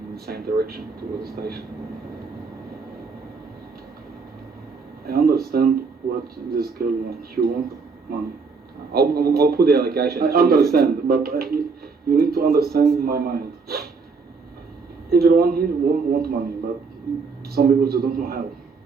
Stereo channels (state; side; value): quieter; left; 4.7 dB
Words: the same direction towards the station. I understand what this girl wants. She wants money. I'll put the allegation. I understand, but you need to understand my mind. Everyone here want money, but some people they don't know how.